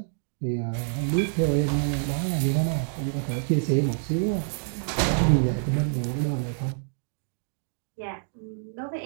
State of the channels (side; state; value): left; silent; digital silence